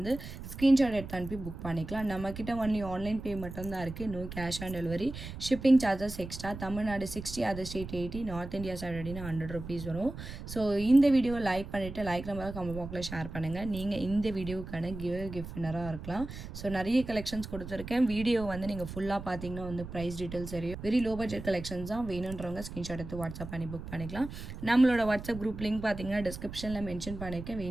ஸ்க்ரீன்ஷாட் எடுத்து அனுப்பி புக் பண்ணிக்கலாம். நம்மக்கிட்ட ஒன்லி ஆன்லைன் பே மட்டும்தான் இருக்குது. No cash on delivery. Shipping charges extra. Tamil Nadu 60, other state 80, north India side 100 rupees வரும். ஸோ இந்த வீடியோ லைக் பண்ணிவிட்டு லைக் நம்பர் கமெண்ட் பாக்ஸில் ஷேர் பண்ணுங்கள். நீங்கள் இந்த வீடியோவுக்கான கிஃப்ட் வின்னராக இருக்கலாம். ஸோ நிறைய கலெக்ஷன்ஸ் கொடுத்துருக்கேன். வீடியோ வந்து நீங்கள் ஃபுல்லாக பார்த்தீங்கன்னா வந்து ப்ரைஸ் டீட்டெயில்ஸ் தெரியும். வெரி லோ பட்ஜெட் கலெக்ஷன்ஸ் தான். வேணுன்றவங்க ஸ்க்ரீன்ஷாட் எடுத்து வாட்ஸ்அப் பண்ணி புக் பண்ணிக்கலாம். நம்மளோட வாட்ஸ்அப் குரூப் லிங்க் பார்த்தீங்கன்னா டிஸ்கிரிப்ஷனில் மென்ஷன் பண்ணியிருக்கேன்.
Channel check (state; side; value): noise; right; rumble, 10 dB below the sound